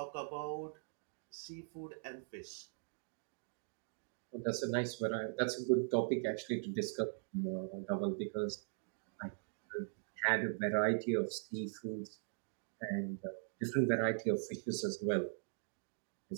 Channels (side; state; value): left; silent; digital silence